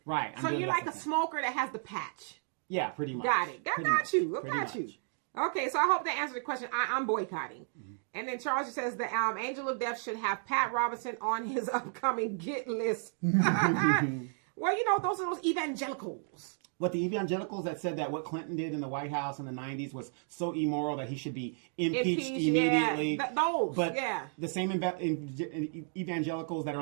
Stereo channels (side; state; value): left; silent; 56 dB below the other